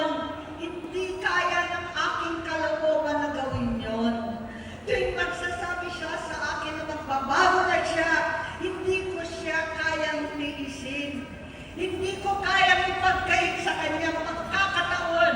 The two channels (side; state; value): both; identical; correlation 1.00